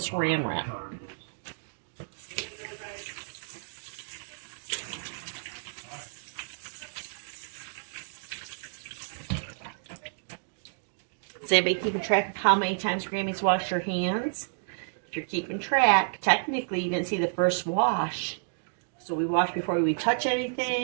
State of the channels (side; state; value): left; silent; digital silence